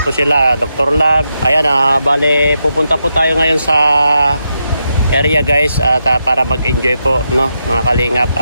sila, Dr. Lab. Ayan, bale, pupunta po tayo ngayon sa area, guys, at para mag-enjoy po, no, mga kalingap.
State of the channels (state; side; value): inverted; both; correlation -0.84